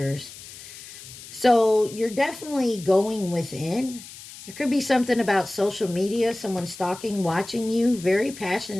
So you're definitely going within. There could be something about social media, someone stalking, watching you, very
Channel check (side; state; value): left; noise; hiss, 16 dB below the sound